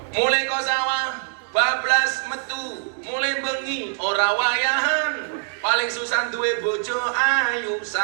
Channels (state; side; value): silent; left; digital silence